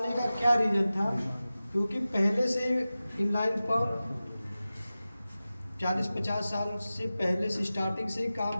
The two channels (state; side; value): inverted; both; correlation -0.95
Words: का क्या रीजन था? क्योंकि पहले से इनलाइन पंप 40-50 साल से पहले से स्टार्टिंग से ही काम